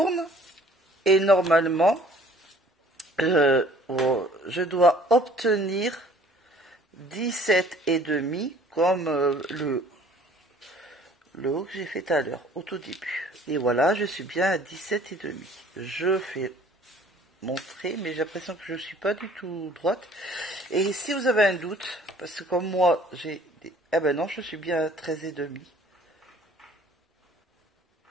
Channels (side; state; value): both; normal; correlation 0.54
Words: et normalement... je dois obtenir 17,5 comme le haut que j'ai fait tout à l'heure, au tout début. Et voilà, je suis bien à 17,5. Je fais mon trait, mais j'ai l'impression que je ne suis pas du tout droite. Et si vous avez un doute, parce que comme moi, j'ai des... Ah ben non, je suis bien à 13,5.